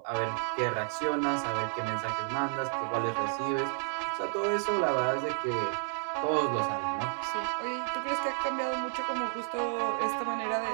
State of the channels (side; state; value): left; silent; 57 dB below the other